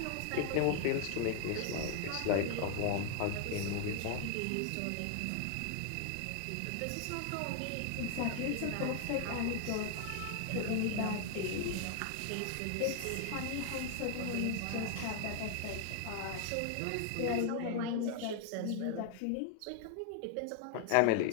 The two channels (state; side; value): different; both; correlation 0.00